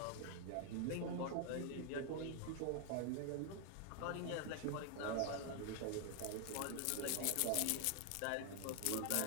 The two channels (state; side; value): different; both; correlation 0.00